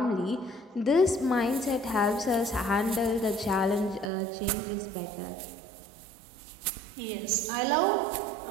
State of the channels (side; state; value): left; drops out; at 4.1 s